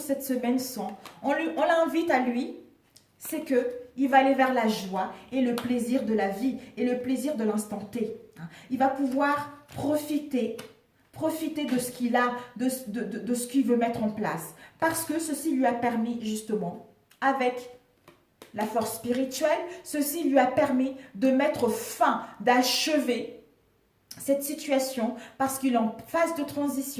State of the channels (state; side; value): identical; both; correlation 1.00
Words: cette semaine sont, on l'invite à lui, c'est que il va aller vers la joie et le plaisir de la vie et le plaisir de l'instant T. Il va pouvoir profiter de ce qu'il a, de ce qu'il veut mettre en place. Parce que ceci lui a permis justement, avec la force spirituelle, ceci lui a permis de mettre fin, d'achever cette situation parce qu'il est en phase de